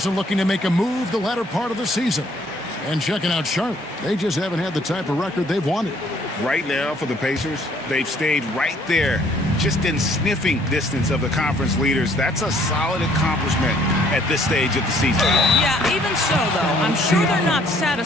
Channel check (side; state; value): both; normal; correlation 0.62